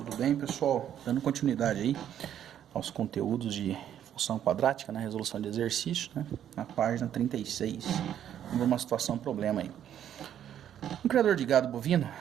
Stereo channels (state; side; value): quieter; left; 10.2 dB